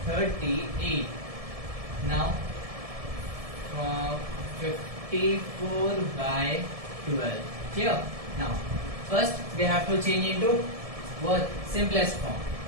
38. Now 54 by 12. Clear? Now first we have to change into what? Simplest form.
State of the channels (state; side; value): late; left; 1.7 ms